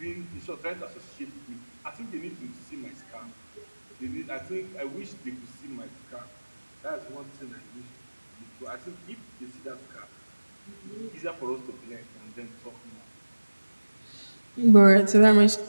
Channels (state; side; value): inverted; both; correlation -1.00